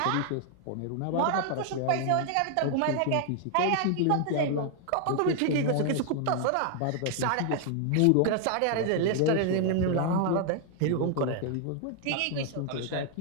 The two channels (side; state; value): both; different; correlation 0.00